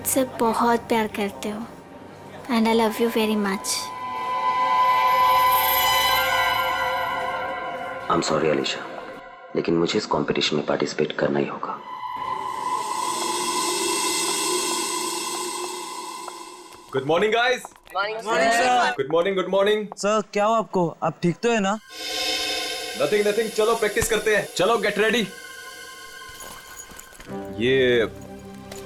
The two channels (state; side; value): identical; both; correlation 1.00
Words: बहुत प्यार करते हो and I love you very much. I am sorry Alisha, लेकिन मुझे इस कंपटीशन में पार्टिसिपेट करना ही होगा। Good morning guys. Morning sir. Good morning, good morning. Sir क्या हो आपको? आप ठीक तो है ना? नथिंग नथिंग, चलो प्रैक्टिस करते हैं। चलो गेट रेडी। ये